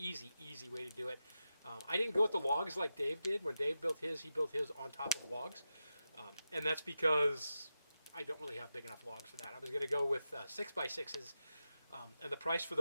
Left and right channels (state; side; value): inverted; both; correlation -0.90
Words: way to do it. I didn't go with the logs like Dave did. When Dave built his, he built his on top of logs. And that's because I don't really have big enough logs for that. I was going to go with 6x6s, and the price for